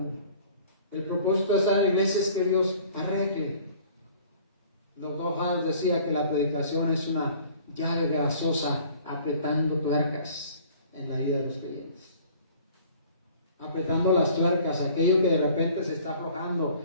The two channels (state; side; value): inverted; both; correlation -0.51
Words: El propósito de estar en la iglesia es que Dios arregle. Doctor House decía que la predicación es una llave grasosa apretando tuercas en la vida de los creyentes. Apretando las tuercas, aquello que de repente se está aflojando,